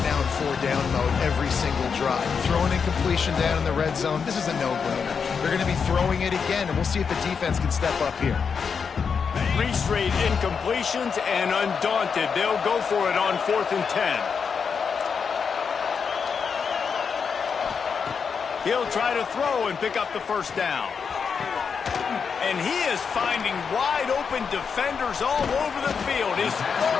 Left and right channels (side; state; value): right; quieter; 6.1 dB